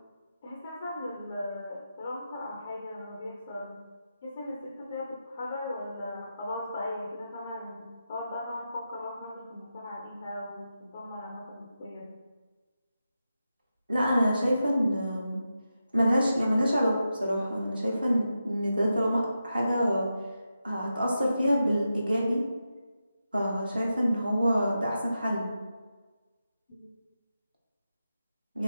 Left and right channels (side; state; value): both; inverted; correlation -0.89